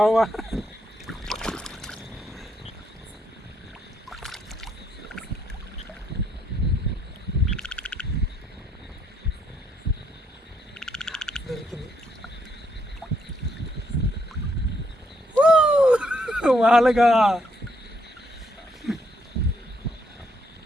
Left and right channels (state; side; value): normal; both; correlation 0.74